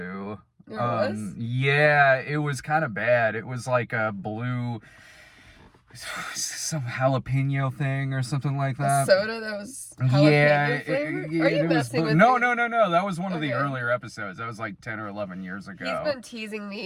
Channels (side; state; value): both; identical; correlation 1.00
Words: There was? Yeah, it was kind of bad. It was like a blue, some jalapeno thing or something like that. A soda that was jalapeno flavor? Are you messing with me? No. That was one of the earlier episodes. That was like 10 or 11 years ago. He's been teasing